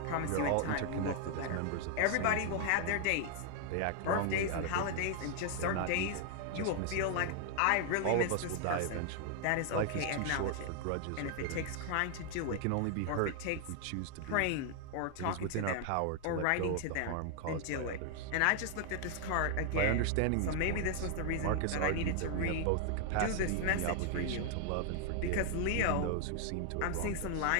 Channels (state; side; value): different; both; correlation 0.00